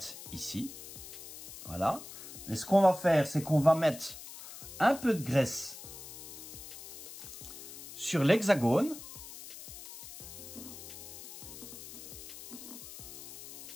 ici, voilà. Mais ce qu'on va faire, c'est qu'on va mettre un peu de graisse sur l'hexagone.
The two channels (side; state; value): left; noise; hiss, 13 dB below the sound